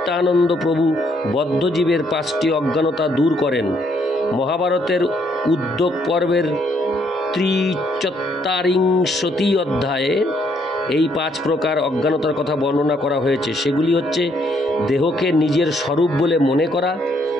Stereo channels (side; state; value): both; normal; correlation 0.70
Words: প্রভু বদ্ধজীবের 5টি অজ্ঞানতা দূর করেন। মহাভারতের উদ্যোগ পর্বের 43 অধ্যায়ে এই 5 প্রকার অজ্ঞানতার কথা বর্ণনা করা হয়েছে। সেগুলি হচ্ছে: দেহকে নিজের স্বরূপ বলে মনে করা,